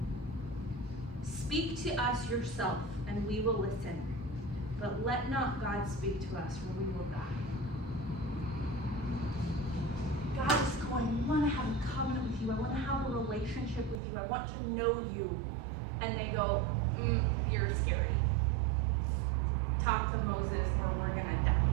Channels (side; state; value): left; drops out; at 14.0 s